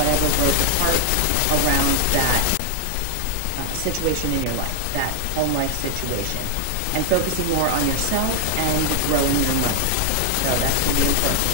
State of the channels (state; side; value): different; both; correlation 0.00